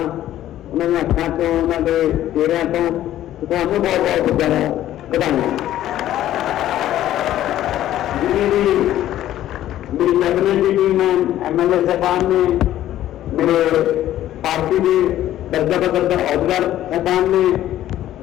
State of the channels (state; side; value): quieter; right; 13.0 dB